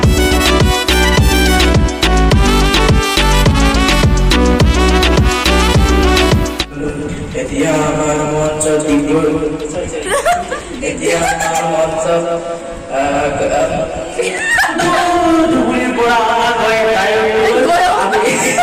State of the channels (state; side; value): identical; both; correlation 1.00